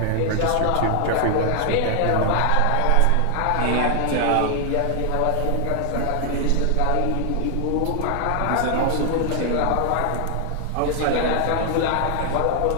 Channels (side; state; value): both; different; correlation 0.00